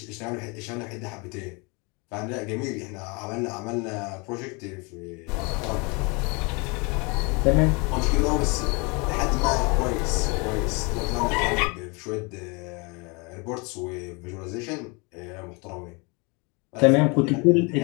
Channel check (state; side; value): quieter; right; 29.7 dB